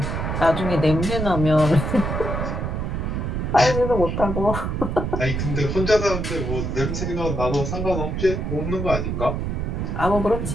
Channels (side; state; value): right; noise; rumble, 2 dB below the sound